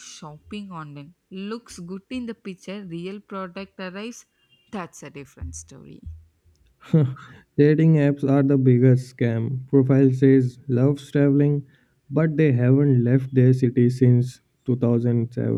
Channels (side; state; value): both; identical; correlation 1.00